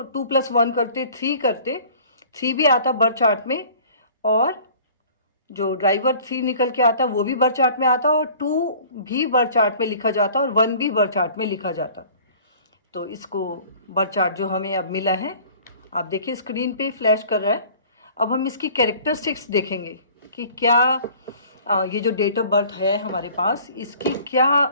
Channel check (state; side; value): inverted; both; correlation -0.49